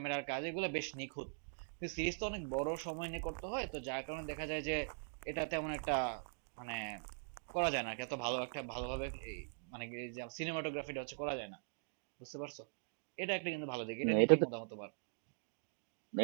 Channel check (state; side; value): silent; left; digital silence